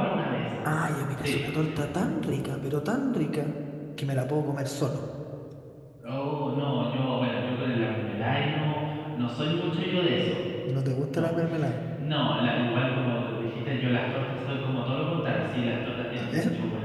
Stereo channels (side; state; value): both; identical; correlation 1.00